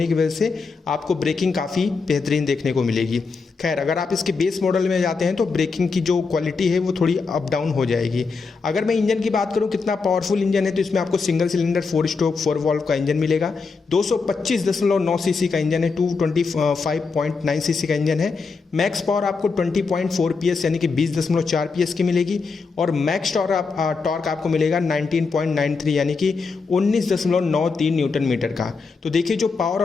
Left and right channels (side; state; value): right; quieter; 4.6 dB